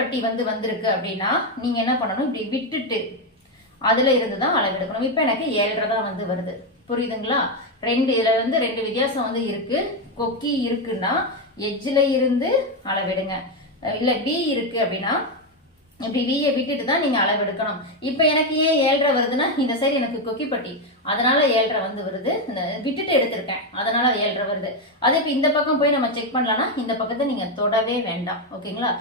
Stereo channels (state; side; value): normal; both; correlation 0.07